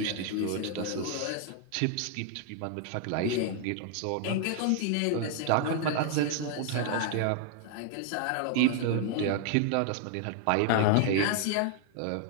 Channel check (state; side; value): different; both; correlation 0.00